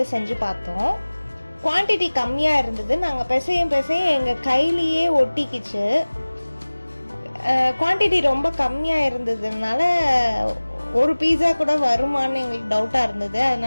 செஞ்சு பார்த்தோம். குவான்டிட்டி கம்மியாக இருந்தது. நாங்கள் பிசையும் எங்கள் கையிலேயே ஒட்டிக்கிச்சு. குவான்டிட்டி ரொம்ப கம்மியாக இருந்ததுனால ஒரு பீட்சா கூட வருமானு எங்களுக்கு டவுட்டாக இருந்தது.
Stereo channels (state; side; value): inverted; both; correlation -1.00